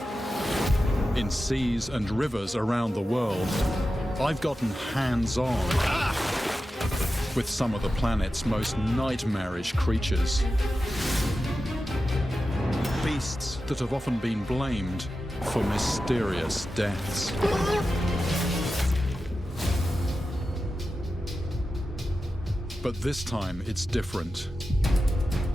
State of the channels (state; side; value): normal; both; correlation 0.92